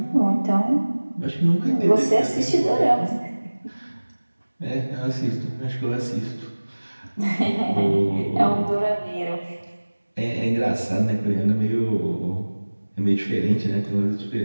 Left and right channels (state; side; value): inverted; both; correlation -1.00